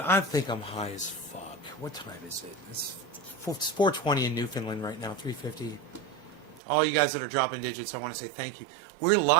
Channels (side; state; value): left; drops out; at 6.6 s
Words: I think I'm high as fuck. What time is it? It's 4:20 in Newfoundland right now, 3:50. All you guys that are dropping digits, I want to say thank you. We're